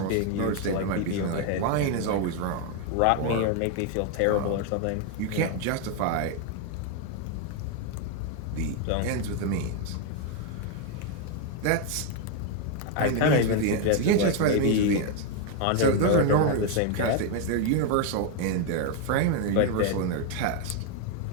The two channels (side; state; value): both; different; correlation 0.01